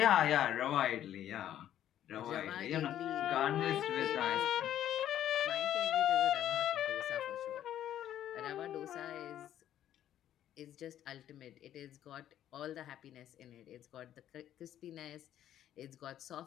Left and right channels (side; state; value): right; quieter; 11.4 dB